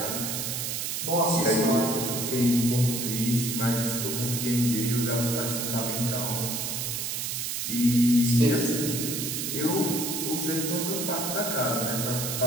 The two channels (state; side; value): noise; right; hiss, 2 dB below the sound